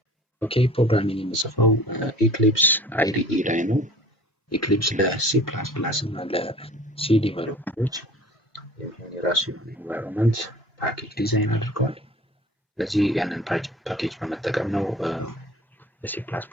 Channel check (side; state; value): both; normal; correlation 0.45